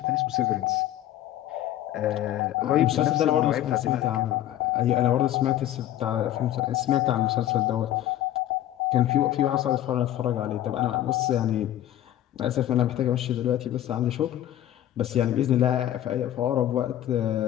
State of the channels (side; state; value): right; quieter; 12.7 dB